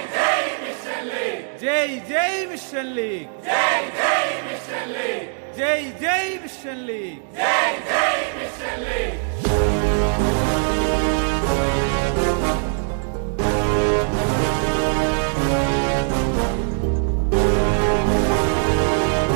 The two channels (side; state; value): left; silent; 65 dB below the other